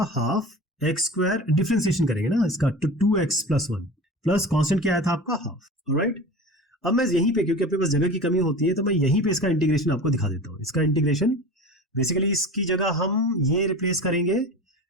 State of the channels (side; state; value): both; normal; correlation 0.34